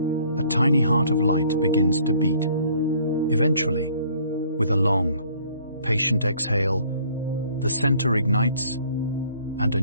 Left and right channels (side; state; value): both; inverted; correlation -0.58